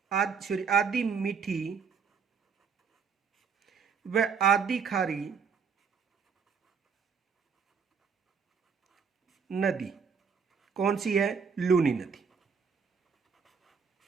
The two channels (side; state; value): left; quieter; 6.1 dB